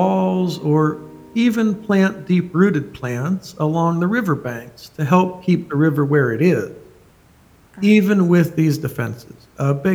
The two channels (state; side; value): identical; both; correlation 1.00